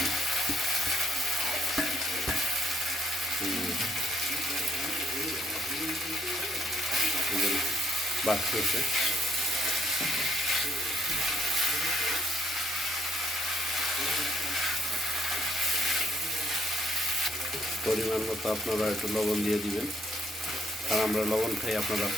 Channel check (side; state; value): both; normal; correlation 0.70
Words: বাড়তেছে। পরিমাণ মতো আপনারা একটু লবণ দিয়ে দিবেন, কারণ আমরা লবণ খাই, আপনারা